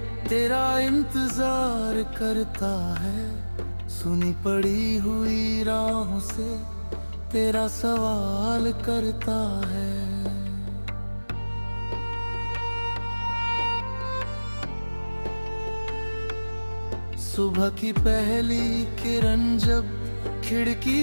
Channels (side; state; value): both; inverted; correlation -1.00